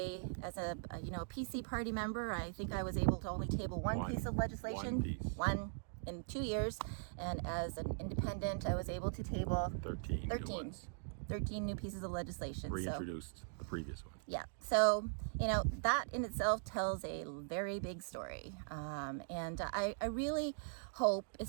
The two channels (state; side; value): silent; left; digital silence